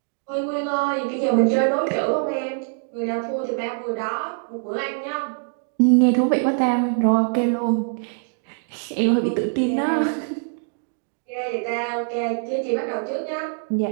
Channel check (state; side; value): silent; left; 63 dB below the other